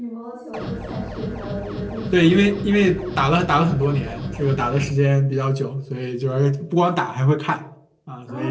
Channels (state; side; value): identical; both; correlation 1.00